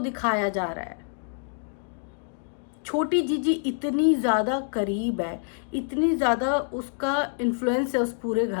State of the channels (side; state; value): right; silent; digital silence